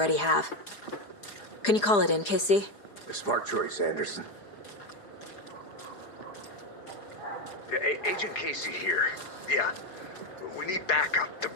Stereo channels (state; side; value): late; right; 4.9 ms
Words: have. Can you call it in, Casey? A smart choice, Anderson. Yeah, Agent Casey here. Yeah. We need backup. The